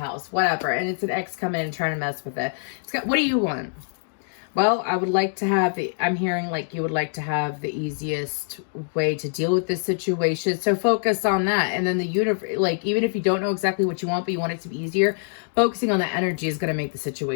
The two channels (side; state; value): right; silent; digital silence